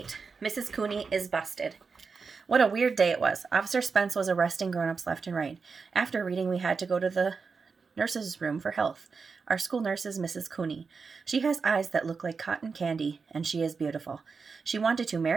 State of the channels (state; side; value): quieter; left; 5.0 dB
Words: Mrs. Cooney is busted. What a weird day it was. Officer Spence was arresting grown-ups left and right. After reading, we had to go to the nurse's room for health. Our school nurse is Mrs. Cooney. She has eyes that look like cotton candy, and she is beautiful. She wanted to